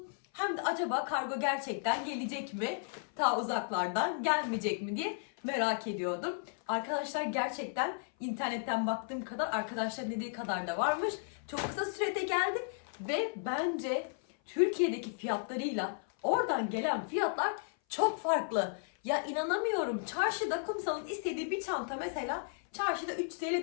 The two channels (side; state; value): right; silent; 55 dB below the other